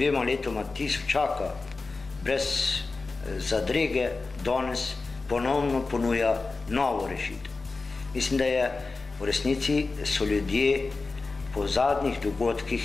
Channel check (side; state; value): right; quieter; 3.8 dB